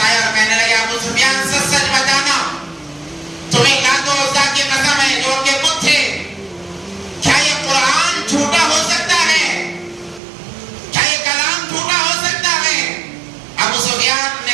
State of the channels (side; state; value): left; drops out; at 10.2 s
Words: آئے اور کہنے لگے ابو سفیان سچ سچ بتانا, تمہیں لات و عزا کی قسم ہے جو کہ بت تھے, کیا یہ قرآن جھوٹا ہو سکتا ہے, کیا یہ کلام جھوٹا ہو سکتا ہے. ابو سفیان